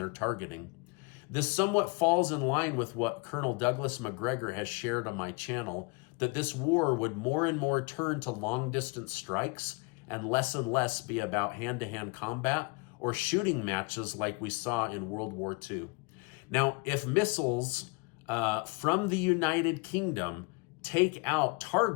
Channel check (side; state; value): right; quieter; 28.3 dB